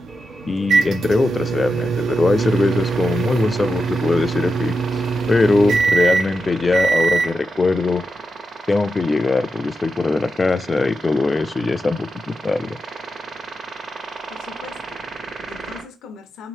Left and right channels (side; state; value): both; normal; correlation 0.88